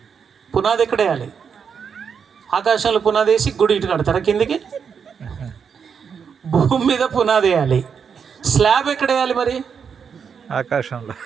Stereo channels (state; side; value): quieter; left; 6.7 dB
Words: పునాది ఎక్కడ వేయాలి? ఆకాశంలో పునాది వేసి గుడి ఇటు కడతారా కిందికి? భూమి మీద పునాది వేయాలి. స్లాబ్ ఎక్కడ వేయాలి మరి?